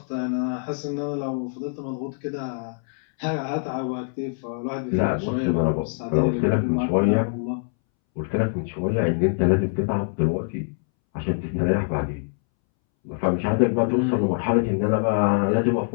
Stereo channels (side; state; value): right; silent; 62 dB below the other